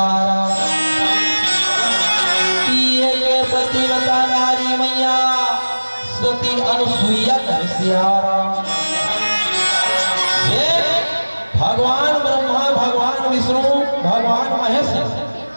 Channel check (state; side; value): inverted; both; correlation -1.00